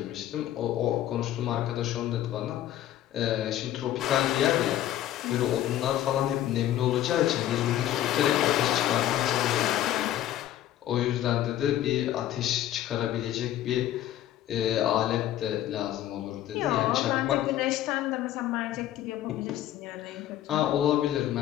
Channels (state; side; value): quieter; right; 12.6 dB